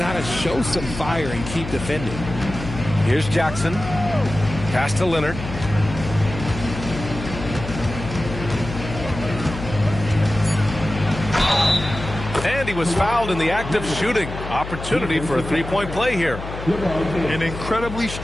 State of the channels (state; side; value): noise; left; hum, 9 dB below the sound